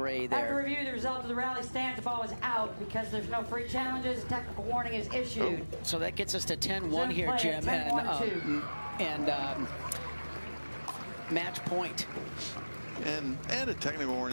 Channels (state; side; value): inverted; both; correlation -1.00